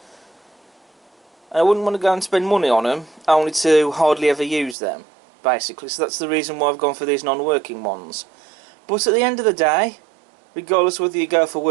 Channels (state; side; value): drops out; left; at 4.8 s